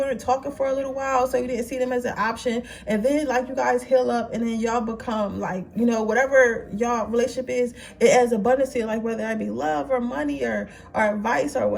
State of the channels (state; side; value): identical; both; correlation 1.00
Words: talking for a little while, so you didn't see them as an option, and then like you guys heal up, and then y'all become like, whatever y'all relationship is, it adds abundance to your life, whether that be love or money or advice or